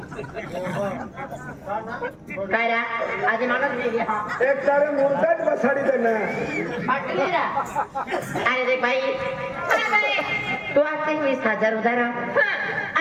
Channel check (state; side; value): identical; both; correlation 1.00